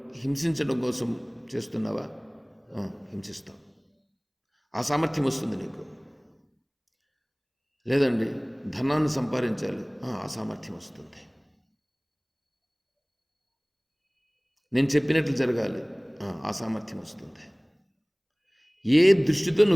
హింసించడం కోసం చేస్తున్నావా? హింసిస్తావు. ఆ సామర్థ్యం వస్తుంది నీకు. లేదండి ధనాన్ని సంపాదించాలి, ఆ సామర్థ్యం వస్తుంది. నేను చెప్పినట్లు జరగాలి, ఆ సామర్థ్యం వస్తుంది. ఏ దృష్టితో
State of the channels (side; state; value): both; identical; correlation 1.00